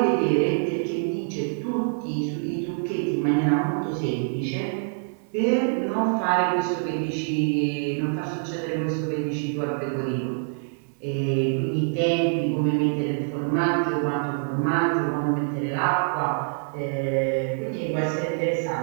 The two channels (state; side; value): silent; left; digital silence